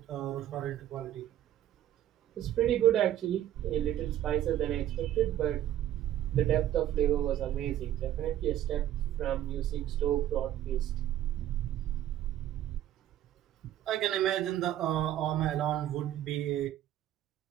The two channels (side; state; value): left; quieter; 12.2 dB